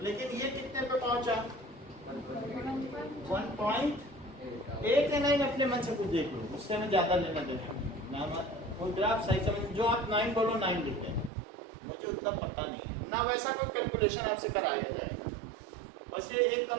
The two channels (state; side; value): drops out; left; at 11.3 s